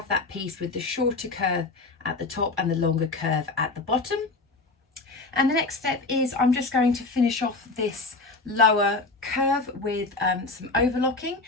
that piece with the shorter curve at the top and the longer curve at the bottom. And the next step is I'm just going to finish off this lower curve with some overlocking,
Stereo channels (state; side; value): quieter; right; 3.5 dB